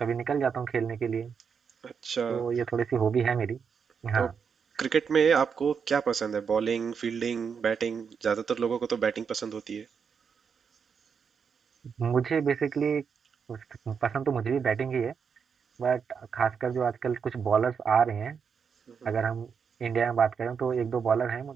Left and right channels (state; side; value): quieter; left; 6.4 dB